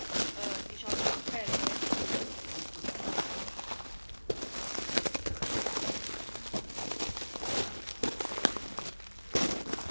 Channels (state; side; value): inverted; both; correlation -1.00